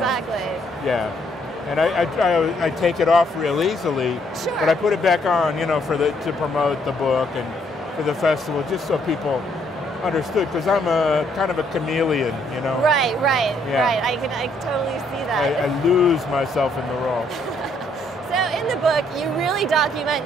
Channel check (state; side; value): normal; both; correlation 0.69